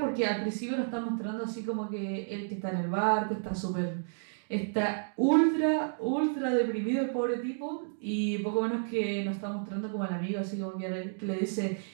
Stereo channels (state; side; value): silent; left; digital silence